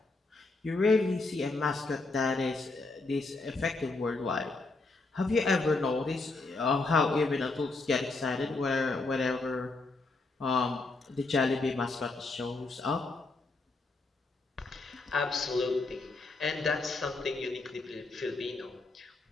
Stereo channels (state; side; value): quieter; right; 3.4 dB